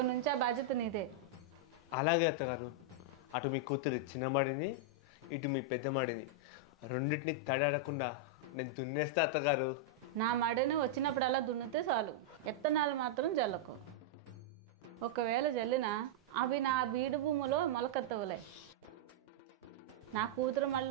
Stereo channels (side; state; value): both; normal; correlation -0.04